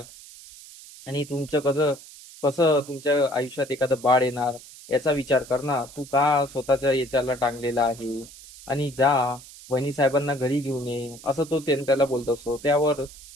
आणि तुमचं कसं कसं तुमच्या आयुष्यात एखादं बाळ येणार याचा विचार कर ना. तू का स्वतःच्या याच्याला टांगलेला आहे? आणि जा वहिनी साहेबांना घरी घेऊन ये, असं तो त्याला बोलत असतो. त्यावर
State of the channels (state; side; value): noise; right; hiss, 18 dB below the sound